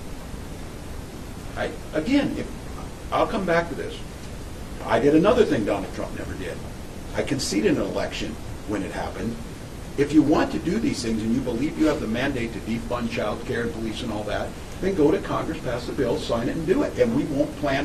I'll come back to this. I did another thing Donald Trump never did. I conceded an election when it happened. If you want to do these things and you believe you have the mandate to defund child care and police and all that, then go to Congress, pass the bill, sign it, and do it. And we won't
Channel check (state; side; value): identical; both; correlation 1.00